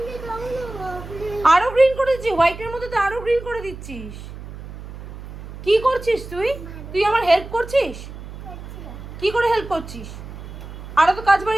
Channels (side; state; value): right; noise; hum, 12 dB below the sound